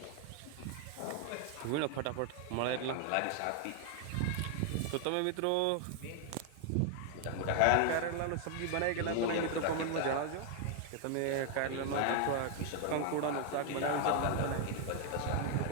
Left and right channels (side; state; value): both; different; correlation 0.00